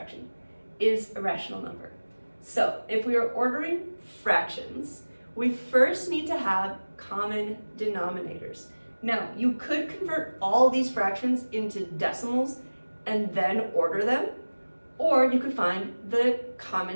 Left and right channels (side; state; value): both; inverted; correlation -1.00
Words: is a rational number. So if we are ordering fractions, we first need to have common denominators. Now, you could convert all these fractions into decimals and then order them, or you could find the